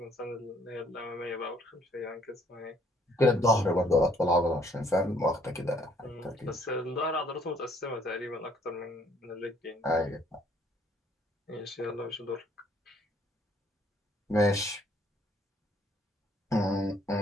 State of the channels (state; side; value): normal; both; correlation 0.63